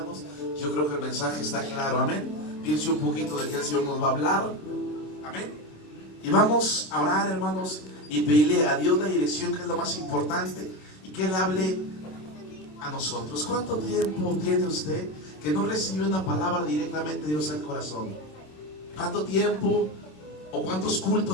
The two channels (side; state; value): right; late; 27 ms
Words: Yo creo que el mensaje está claro, amén. Piense un poquito de que el Señor nos va a hablar, amén. Y vamos a orar, hermanos, y pedirle a Dios la dirección, que es lo más importante, y que Él hable a nosotros. ¿Cuánto tiempo tiene usted que no recibió una palabra directamente de Dios al corazón? ¿Cuánto tiempo o cuántos